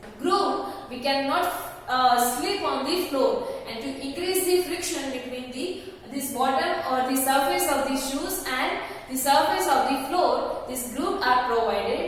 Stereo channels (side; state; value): both; identical; correlation 1.00